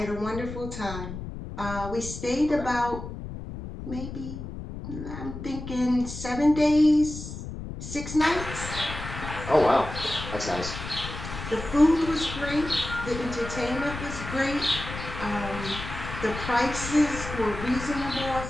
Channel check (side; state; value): left; noise; rumble, 9 dB below the sound